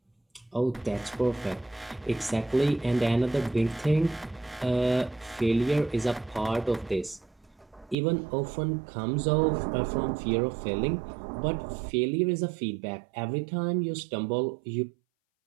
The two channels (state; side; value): drops out; left; at 8.0 s